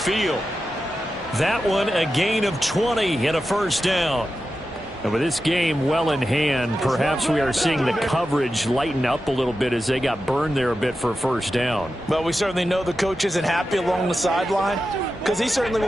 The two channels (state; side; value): normal; both; correlation 0.91